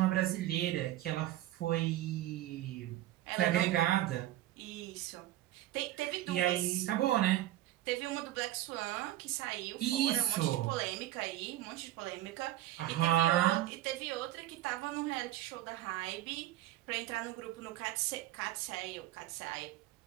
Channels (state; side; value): quieter; left; 14.5 dB